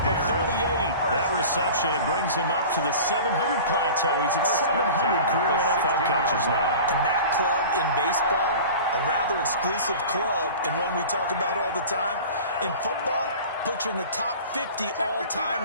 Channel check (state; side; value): inverted; both; correlation -0.38